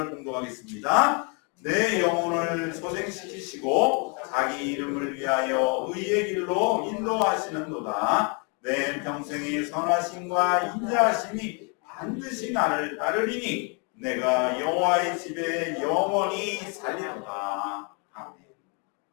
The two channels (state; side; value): quieter; right; 35.2 dB